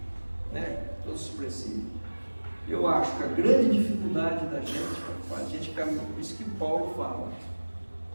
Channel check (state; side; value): inverted; both; correlation -1.00